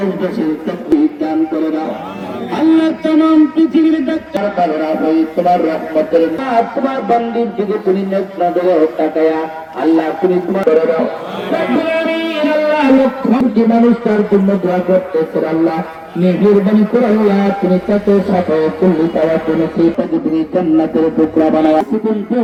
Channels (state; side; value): identical; both; correlation 1.00